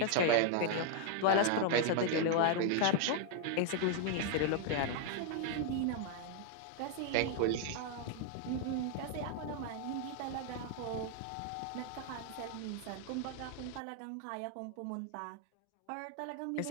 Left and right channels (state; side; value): different; both; correlation 0.00